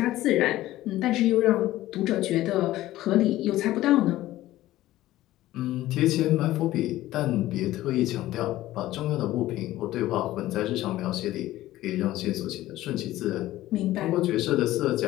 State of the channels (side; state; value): right; quieter; 15.5 dB